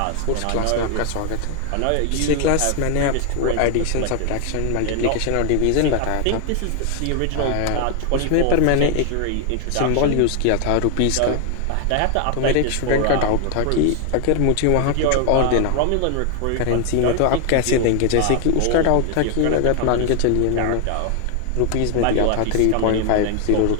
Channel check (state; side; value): different; both; correlation 0.00